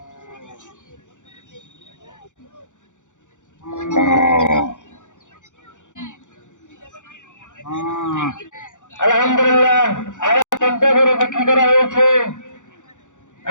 আলহামদুলিল্লাহ আরো ৫০ করে বিক্রি করা হয়েছে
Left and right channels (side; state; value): right; late; 0.86 ms